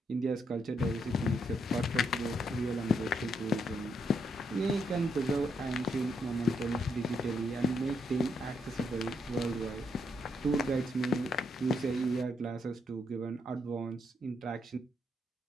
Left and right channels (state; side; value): normal; both; correlation 0.77